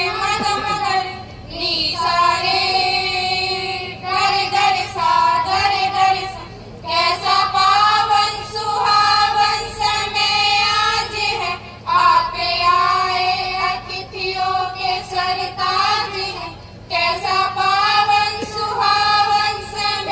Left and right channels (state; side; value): identical; both; correlation 1.00